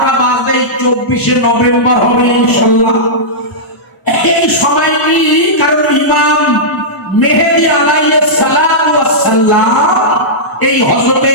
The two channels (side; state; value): right; late; 1.0 ms